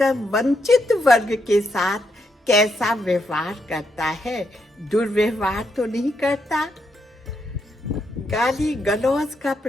वंचित वर्ग के साथ कैसा व्यवहार करता है। दुर्व्यवहार तो नहीं करता, गाली गलौज का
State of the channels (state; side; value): normal; both; correlation 0.79